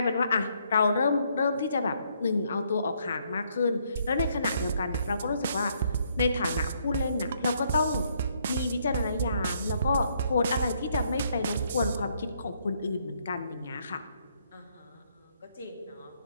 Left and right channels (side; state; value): both; inverted; correlation -0.71